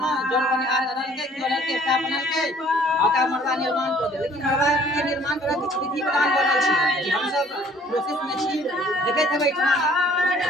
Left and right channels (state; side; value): normal; both; correlation 0.56